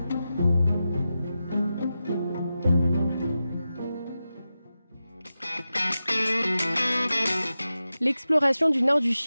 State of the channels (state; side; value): inverted; both; correlation -0.92